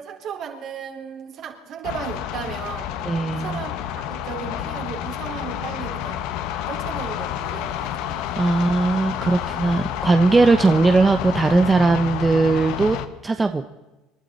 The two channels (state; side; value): normal; both; correlation 0.82